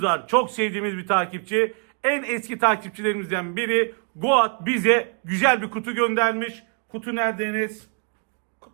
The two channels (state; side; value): quieter; left; 38.7 dB